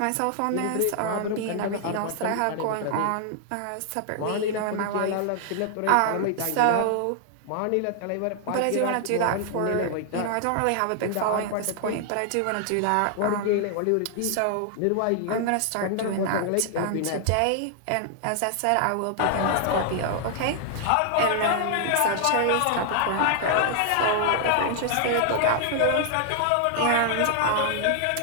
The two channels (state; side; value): different; both; correlation 0.00